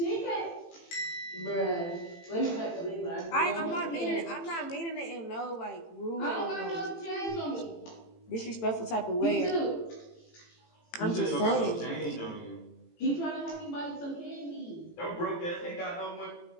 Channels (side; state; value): right; late; 18 ms